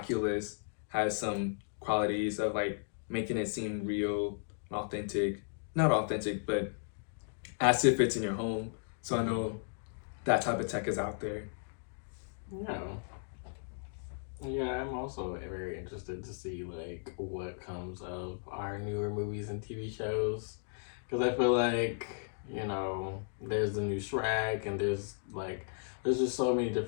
has some qualities of like making it seem real, authentic. Not authentic, but as if it's in your home. So I know that type of tech is out there. Yeah. Yeah, I'm also very interested to see like what comes of our newer movies and TV shows, because I feel like there's the new Shrek, and there's just so many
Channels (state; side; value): silent; right; digital silence